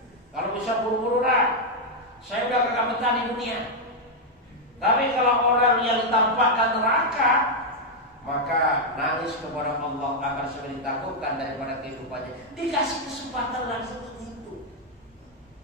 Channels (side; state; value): both; normal; correlation 0.00